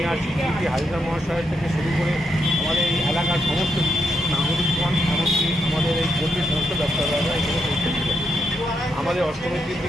সিটি হাজরা মহাশয় থেকে শুরু করে আমাদের এই এলাকার সমস্ত নাগরিকগণ, এমনকি আমাদের এই পল্লীর সমস্ত ব্যবসাদাররা এখানে পৌঁছেছিলেন। আমাদের অষ্টমীর দিন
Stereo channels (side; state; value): both; normal; correlation 0.81